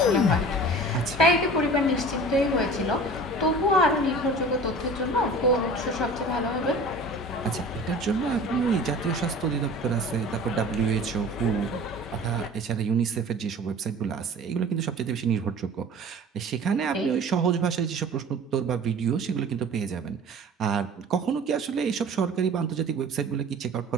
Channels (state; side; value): normal; both; correlation 0.42